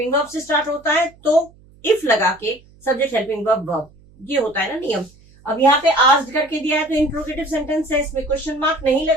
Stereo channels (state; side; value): noise; right; hum, 27 dB below the sound